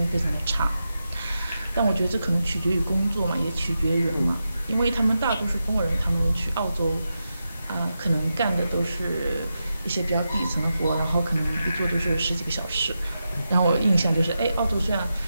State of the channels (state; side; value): inverted; both; correlation -0.89